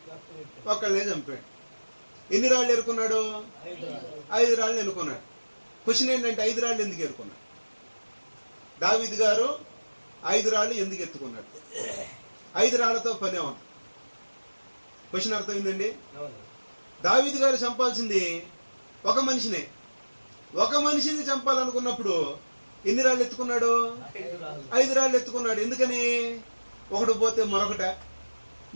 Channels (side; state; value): both; inverted; correlation -1.00